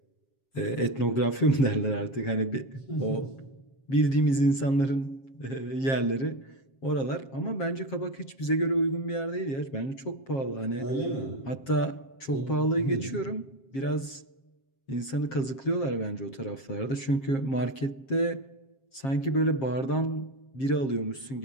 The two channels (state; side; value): late; right; 7.5 ms